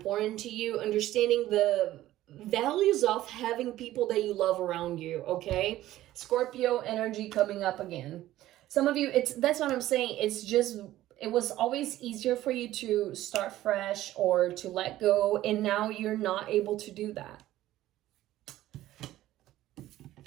to you, understanding the values of having people that you love around you, okay? Scorpio energy coming up again. Some of you, that's what I'm saying. It was always easier for you to start fresh or to let go, and now you're not able to do that.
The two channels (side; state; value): left; quieter; 14.7 dB